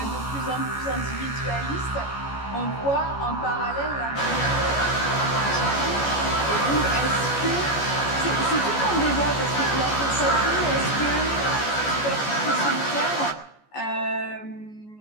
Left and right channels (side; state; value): right; late; 14 ms